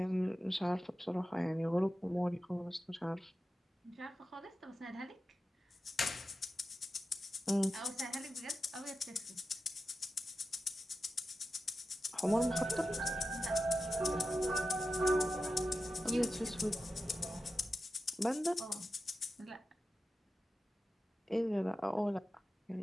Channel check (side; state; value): both; normal; correlation 0.91